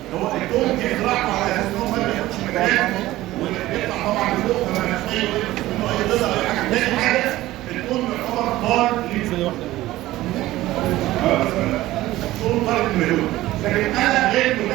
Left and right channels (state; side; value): quieter; left; 16.4 dB